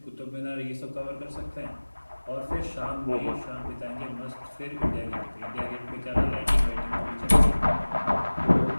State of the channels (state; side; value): inverted; both; correlation -1.00